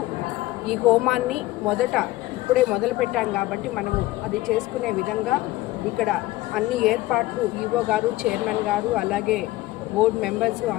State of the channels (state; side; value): quieter; right; 17.7 dB